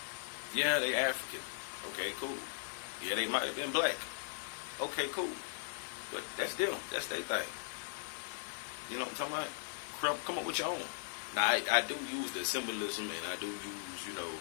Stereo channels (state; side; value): silent; right; 52 dB below the other